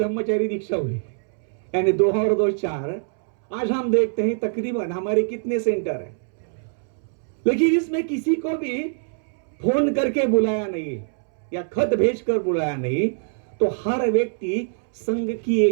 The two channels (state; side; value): silent; left; 63 dB below the other